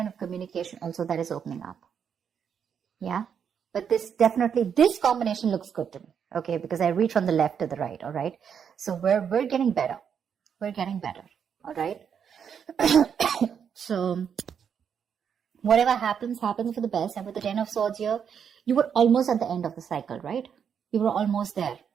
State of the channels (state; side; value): quieter; left; 7.6 dB